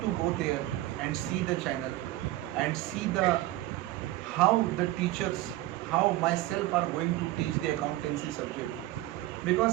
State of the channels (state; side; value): quieter; left; 16.7 dB